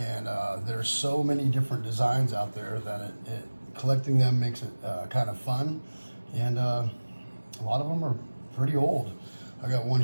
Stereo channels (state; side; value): inverted; both; correlation -1.00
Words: there's so many different designs out there that collecting them makes it kind of fun. And a lot of them are pretty old. I got one